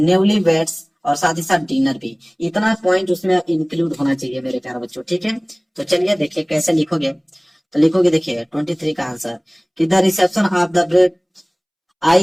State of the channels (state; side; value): identical; both; correlation 1.00